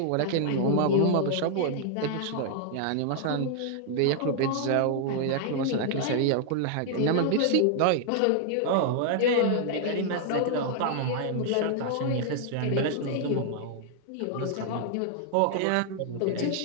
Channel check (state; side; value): different; both; correlation -0.01